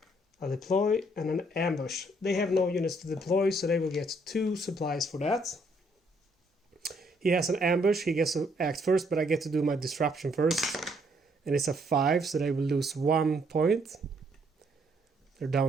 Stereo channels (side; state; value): both; normal; correlation 0.69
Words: a deploy, and an ambush. They have no units to deploy, so they will get 2 supplies for that. He has an ambush, he gets to act first, but I get to do my disruption first. And it's a 5, so they will lose 1 point. They're